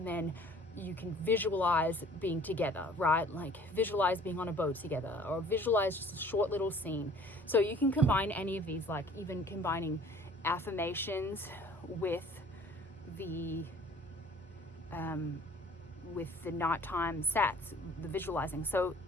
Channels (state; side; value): normal; both; correlation 0.51